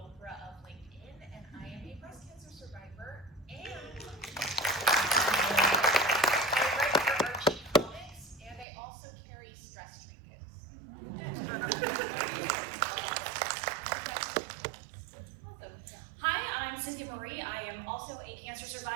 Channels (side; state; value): left; drops out; at 8.7 s